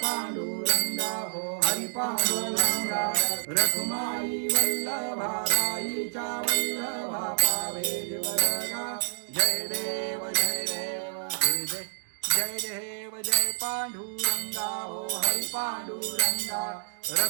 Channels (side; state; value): left; silent; digital silence